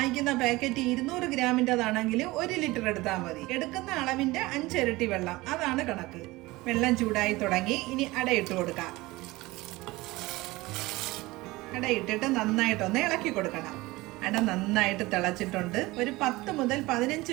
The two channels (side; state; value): left; quieter; 20.5 dB